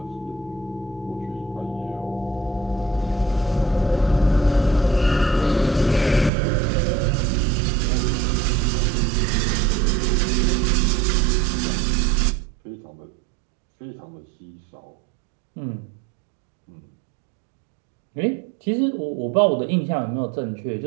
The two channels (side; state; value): left; drops out; at 6.3 s